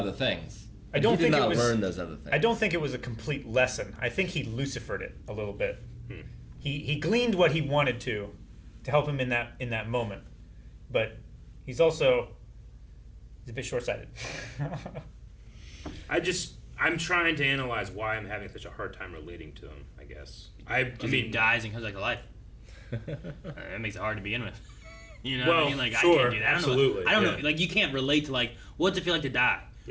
things. I don't he think did not it was, learn those other things. I don't think it was a complete lesson. I think he Lucifered it a little bit. He gleaned what he wanted to help him in that moment, but he's a bit short-sighted. I'm trying to analyze why I'm having such a hard time relating to him, I guess. I mean, he dies and comes back to life. That makes it hard to begin with. You know well, what I mean? Like, sure, I can't do that. absolutely. I don't know. Like, you can't relate to, like, what's it feel like to die?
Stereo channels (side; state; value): both; identical; correlation 1.00